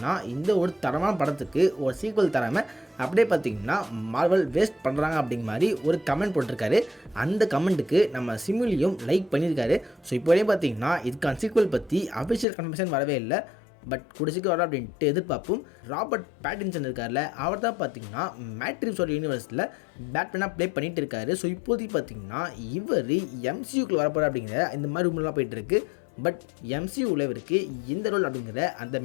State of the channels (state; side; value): drops out; right; at 12.5 s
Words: இந்த ஒரு தரமான படத்துக்கு ஒரு சீக்வல் தராமல் அப்படியே பார்த்தீங்கன்னா மார்வல் வேஸ்ட் பண்ணுறாங்க அப்படிங்கிற மாதிரி ஒரு கமெண்ட் போட்டிருக்காரு. அந்த கமெண்ட்டுக்கு நம்ம சிமுலியும் லைக் பண்ணியிருக்காரு. ஸோ இப்போதே பார்த்தீங்கன்னா இதுக்கான சீக்வல் பற்றி அஃபிஷியல் கன்ஃபர்மேஷன் வரவே இல்லை. பட் குடிச்சிக்கு வர அப்படின்ட்டு எதிர்பார்ப்போம். ராபர்ட் பேட்டின்சன் இருக்கார்ல, அவர் தான் பார்த்தீங்கன்னா மேட்ரிக்ஸோட யூனிவர்ஸில் பேட்மேனாக ப்ளே பண்ணிகிட்டு இருக்காரு. ஸோ இப்போதைக்கு பார்த்தீங்கன்னா இவர் எம்சியூக்குள்ள வரப்போகிற அப்படிங்கிற இந்த மாதிரி ரூம்லாம் போயிட்டு இருக்கு. பட் எம்சியூவில் இவருக்கு இந்த ரோல் அப்படிங்கிற அந்த